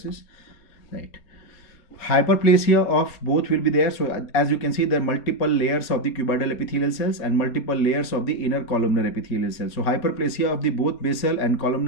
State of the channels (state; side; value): late; right; 4.2 ms